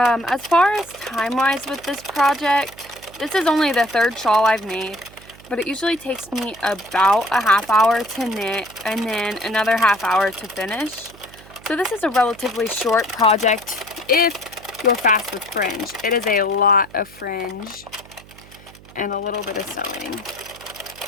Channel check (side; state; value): right; noise; hum, 22 dB below the sound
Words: far as time-wise with this project, this is only the third shawl I've made, but it usually takes me about a half hour to knit and then another half hour to finish. So this is a relatively short project if you're fast with fringe. It is a lot of fringe and a little bit of sewing.